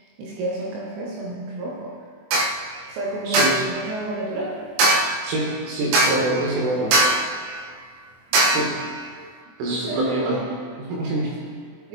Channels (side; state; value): left; late; 24 ms